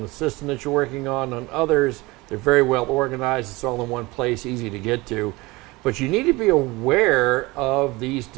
the system that you're working on. On others, they're very well organized. It's all in one place, easy to get to. But you need to be aware of these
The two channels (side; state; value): left; quieter; 22.4 dB